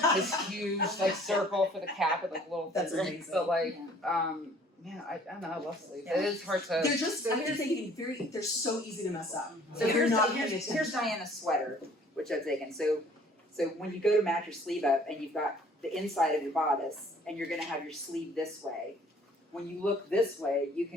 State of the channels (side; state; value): both; normal; correlation 0.55